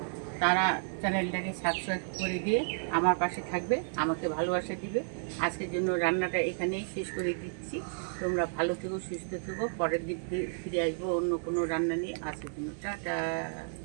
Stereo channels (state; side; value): silent; left; 56 dB below the other